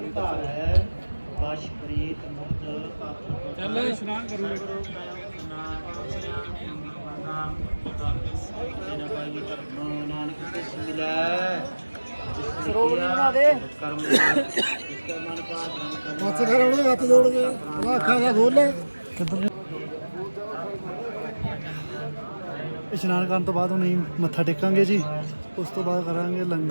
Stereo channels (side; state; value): both; inverted; correlation -1.00